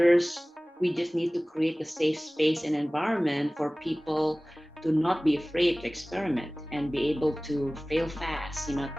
we just need to create a safe space and environment for people to not be afraid to experiment and be able to fail fast,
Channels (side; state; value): both; normal; correlation 0.98